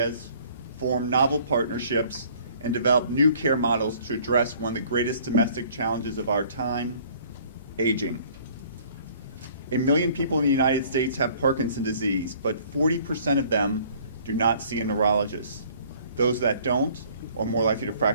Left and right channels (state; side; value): inverted; both; correlation -0.55